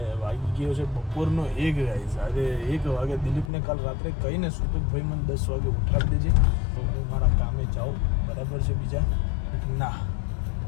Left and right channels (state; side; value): drops out; right; at 3.5 s